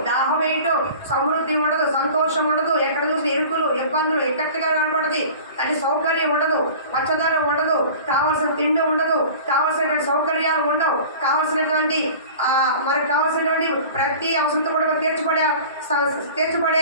దాహం వేయటం, సమృద్ధి ఉండదు, సంతోషం ఉండదు. ఎక్కడ చూసి ఇరుకులు, ఇబ్బందులు ఎక్కడిగా కనపడదు. అది సౌకర్యం ఉండదు, పచ్చదనం ఉండదు, కావాల్సిన తిండి ఉండదు, కావాల్సినటువంటి సౌకర్యాలు ఉండవు, కావాల్సినటువంటి మనకు కావాల్సినటువంటి ప్రతి అవసరం కూడా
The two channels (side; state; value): both; inverted; correlation -0.41